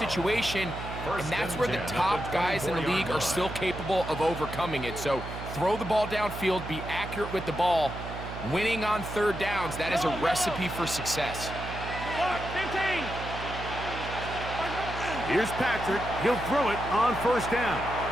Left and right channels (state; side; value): noise; right; hum, 9 dB below the sound